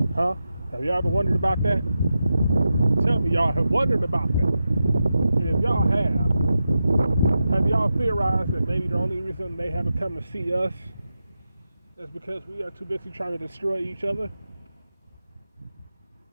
Huh? Have y'all ever wondered about that? Tell me y'all have wondered about that. And if y'all have y'all theorized that maybe the only reason they haven't come to see us is because we are too busy trying to destroy each other?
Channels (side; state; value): both; inverted; correlation -0.90